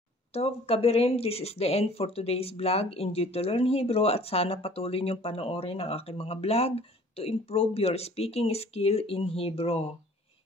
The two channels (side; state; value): both; normal; correlation 0.51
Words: Tov Kabirim, this is the end for today's vlog. Enjoy to learn Hebrew at sana patuloy niyong panoorin ang aking mga vlog to improve your speaking skill in Hebrew.